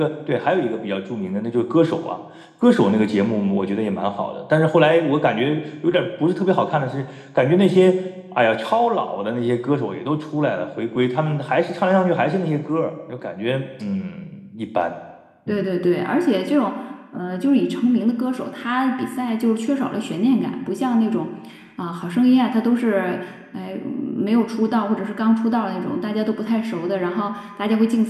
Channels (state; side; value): identical; both; correlation 1.00